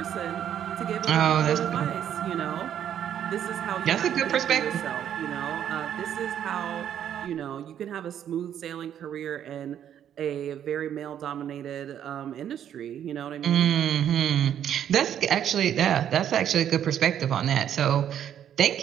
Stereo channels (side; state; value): left; quieter; 9.9 dB